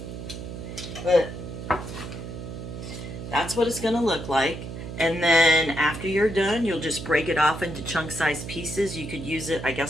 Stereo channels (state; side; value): noise; right; hum, 9 dB below the sound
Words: But that's what it's going to look like. And then after you're done, you'll just break it off into chunk-sized pieces. You could use it, I